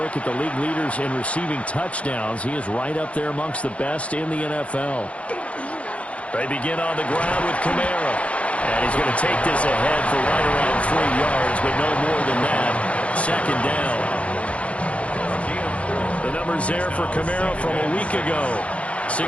at the league leaders in receiving touchdowns, he is right up there amongst the best in the NFL. They begin on the ground with Kamara. And he's going to take this ahead for right around 3 yards, but no more than that. 2nd down. The numbers there for Kamara from a week ago.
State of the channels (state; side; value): late; right; 0.063 ms